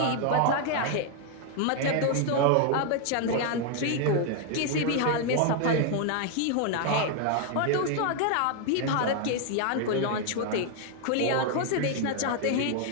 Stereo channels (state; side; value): different; both; correlation 0.00